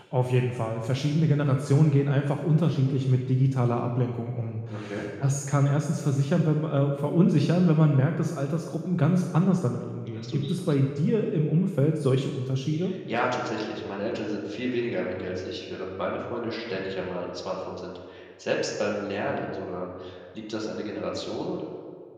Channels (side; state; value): both; identical; correlation 1.00